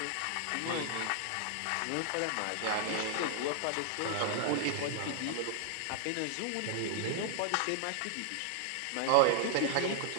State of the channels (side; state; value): both; different; correlation 0.00